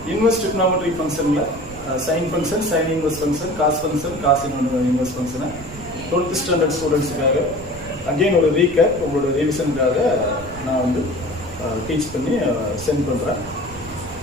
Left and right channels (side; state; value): right; noise; rumble, 16 dB below the sound